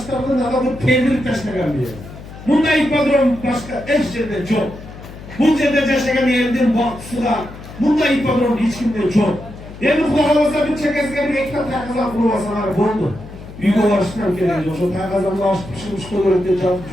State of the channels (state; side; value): noise; left; hum, 15 dB below the sound